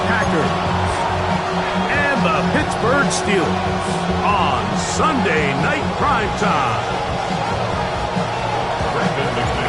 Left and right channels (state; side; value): noise; right; hum, 23 dB below the sound